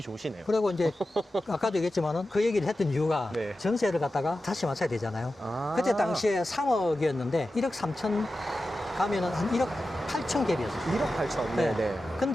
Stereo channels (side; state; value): both; normal; correlation 0.93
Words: 좋으시네요. 그리고 이제 아까도 얘기했지만은 그 얘기를 했던 이유가 네. 전세를 갖다가 다시 맞춰야 되잖아요. 그때 당시에 3억이었는데 1억 3천 가면은 한 1억 8천 갭이었어요. 1억 8천. 네. 네네.